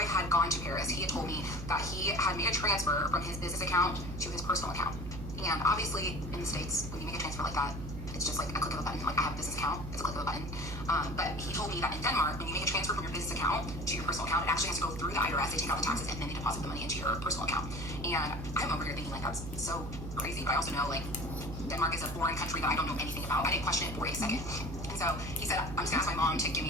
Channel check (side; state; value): right; noise; hum, 8 dB below the sound